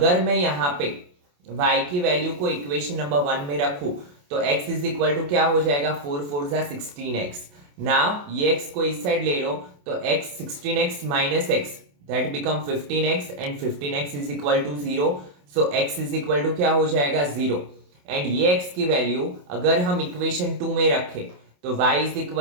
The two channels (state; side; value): late; left; 28 ms